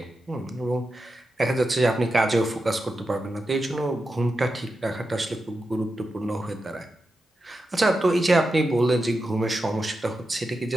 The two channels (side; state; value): both; normal; correlation 0.89